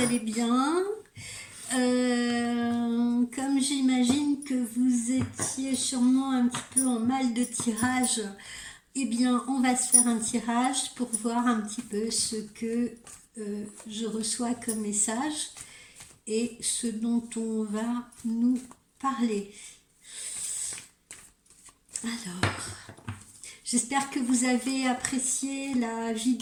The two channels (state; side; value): identical; both; correlation 1.00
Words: allez bien. Comme j'imagine que vous étiez sûrement un petit peu en mal de tirage, eh bien on va se faire un tirage pour voir un petit peu ce que je reçois comme message et ce dont on va nous parler. Alors, j'espère que vous avez apprécié la